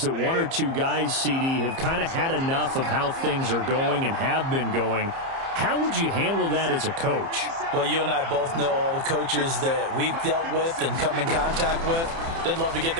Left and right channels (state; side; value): late; left; 30 ms